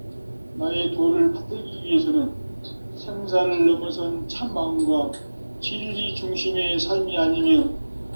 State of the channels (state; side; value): inverted; both; correlation -1.00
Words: 나의 도를 받들기 위해서는 생사를 넘어선 참 마음과 진리 중심의 삶이 아니면